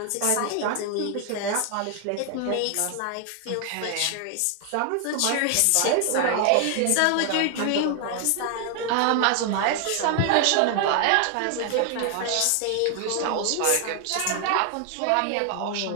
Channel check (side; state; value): both; different; correlation 0.00